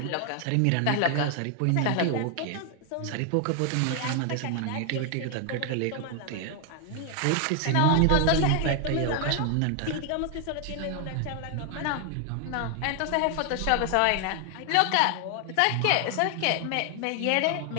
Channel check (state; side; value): different; both; correlation 0.00